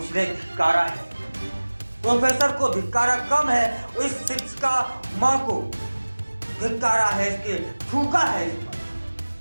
धिक्कारा है। प्रोफेसर को धिक्कारा कम है, इस शिक्षिका मां को धिक्कारा है, इसके थूका है इस पर।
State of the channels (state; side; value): inverted; both; correlation -1.00